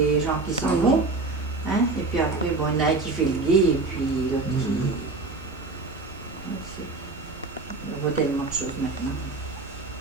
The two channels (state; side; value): quieter; left; 3.6 dB